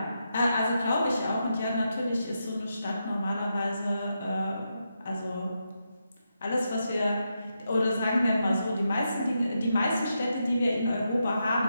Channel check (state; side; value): inverted; both; correlation -0.84